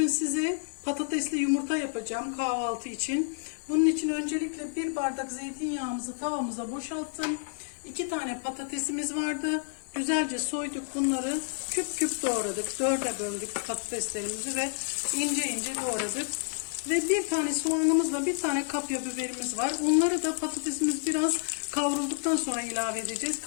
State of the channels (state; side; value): silent; right; 56 dB below the other